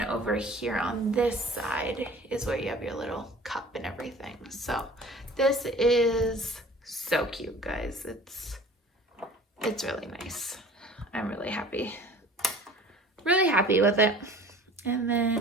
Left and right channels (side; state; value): both; normal; correlation 0.45